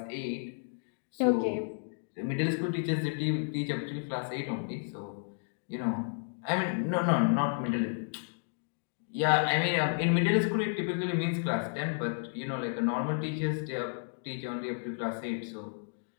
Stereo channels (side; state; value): right; silent; digital silence